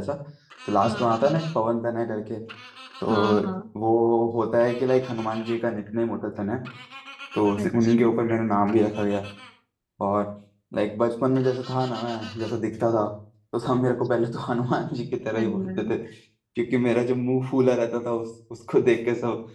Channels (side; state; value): both; identical; correlation 1.00